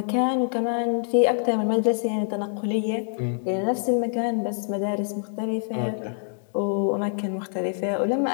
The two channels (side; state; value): right; silent; 59 dB below the other